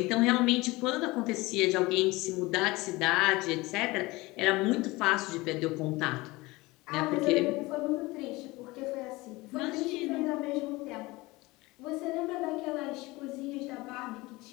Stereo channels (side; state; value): right; quieter; 21.7 dB